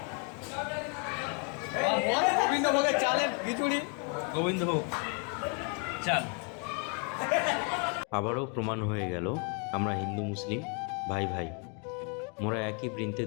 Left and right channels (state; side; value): quieter; right; 35.3 dB